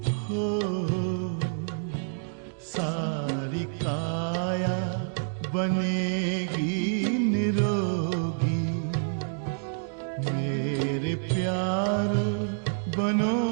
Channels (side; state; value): left; silent; digital silence